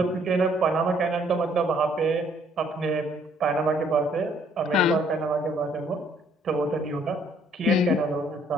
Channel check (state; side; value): normal; both; correlation 0.64